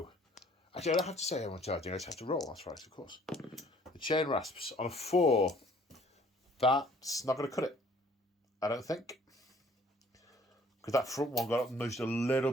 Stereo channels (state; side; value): normal; both; correlation 0.57